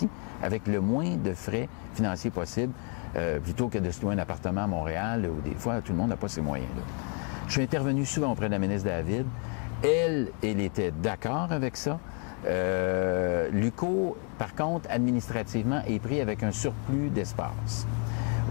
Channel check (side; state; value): right; quieter; 40.0 dB